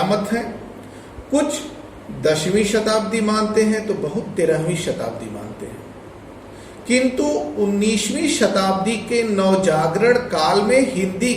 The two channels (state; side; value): identical; both; correlation 1.00